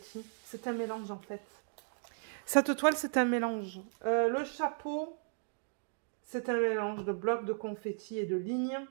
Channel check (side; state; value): left; silent; digital silence